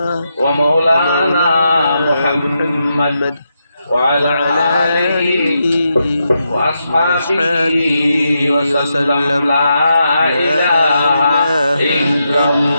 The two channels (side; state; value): both; inverted; correlation -0.83